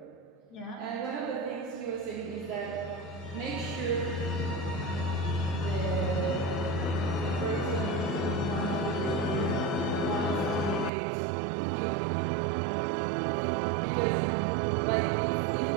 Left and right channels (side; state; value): left; drops out; at 10.9 s